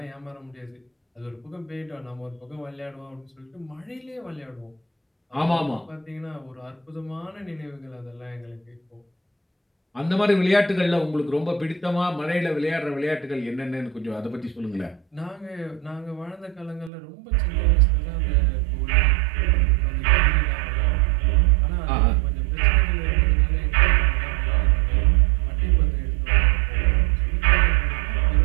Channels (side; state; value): left; drops out; at 16.9 s